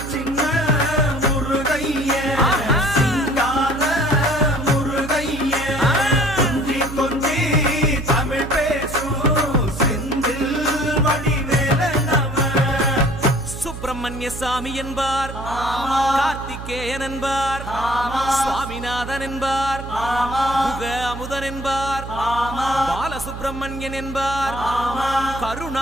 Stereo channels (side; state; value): right; noise; hum, 10 dB below the sound